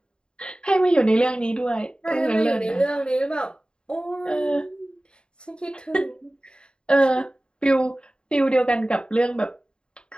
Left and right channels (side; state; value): right; late; 0.051 ms